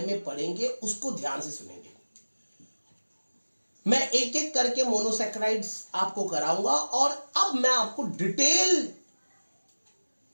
में पढ़ेंगे, उसको ध्यान से सुनेंगे। मैं एक एक करके मोनोसैकेराइड्स आपको कराऊंगा और अब मैं आपको डिटेल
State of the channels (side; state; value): both; inverted; correlation -1.00